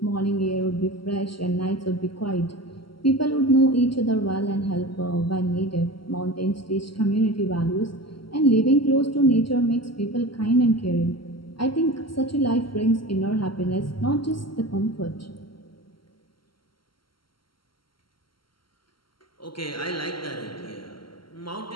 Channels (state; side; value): late; right; 0.73 ms